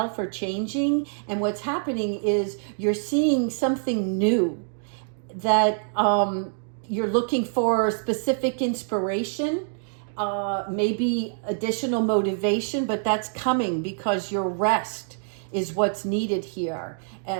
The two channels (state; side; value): silent; left; digital silence